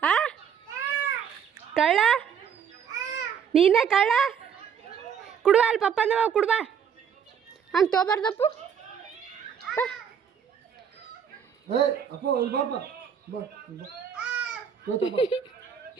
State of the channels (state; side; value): quieter; left; 7.7 dB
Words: ಕಳ್ಳ, ನೀನೇ ಕಳ್ಳ. ಕುಡುವ ಅಲ್ಲಿ ಪಪ್ಪ ಅಂದವ, ಕುಡುವ ಹಂಗೆ ತೊಗೊಬಾರ್ದಪ್ಪು.